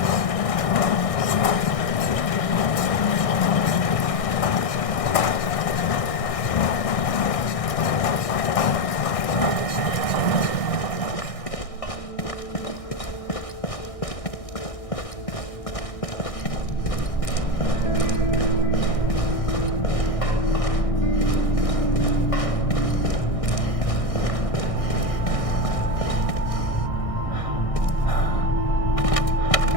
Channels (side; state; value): right; late; 1.6 ms